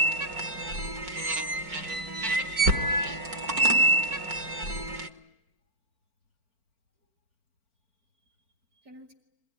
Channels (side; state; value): left; late; 4.4 ms